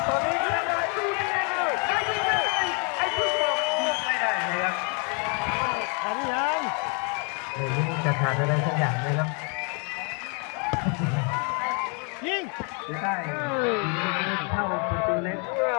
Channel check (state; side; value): quieter; right; 34.8 dB